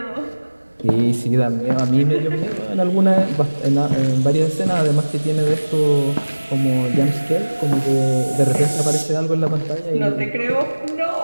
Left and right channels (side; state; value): both; inverted; correlation -1.00